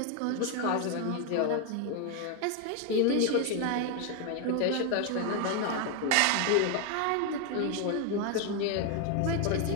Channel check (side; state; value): both; different; correlation 0.01